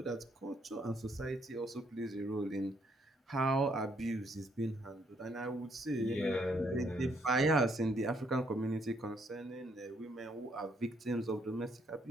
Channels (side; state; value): both; normal; correlation 0.71